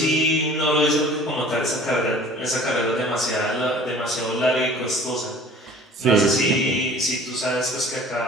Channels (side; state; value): both; normal; correlation 0.47